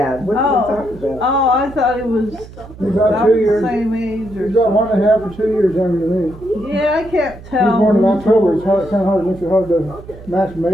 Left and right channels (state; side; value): noise; right; hum, 17 dB below the sound